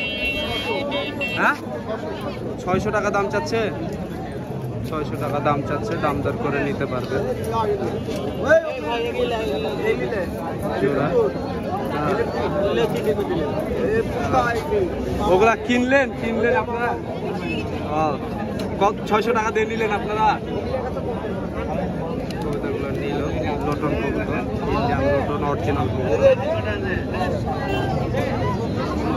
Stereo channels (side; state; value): both; identical; correlation 1.00